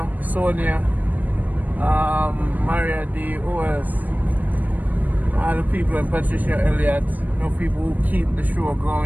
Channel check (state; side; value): late; left; 0.082 ms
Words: Sonia, Maria D, who else? All the people, and Patricia Elliott, no people who keep the show